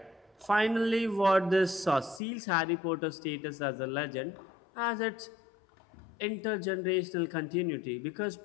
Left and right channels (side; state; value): right; drops out; at 2.2 s